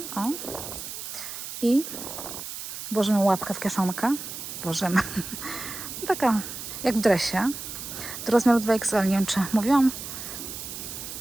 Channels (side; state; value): right; noise; hiss, 8 dB below the sound